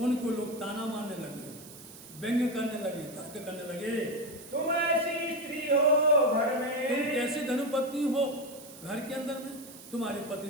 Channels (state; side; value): noise; right; hiss, 18 dB below the sound